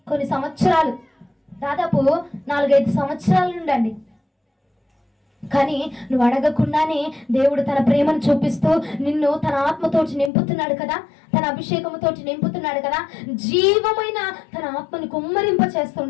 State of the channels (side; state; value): right; drops out; at 10.3 s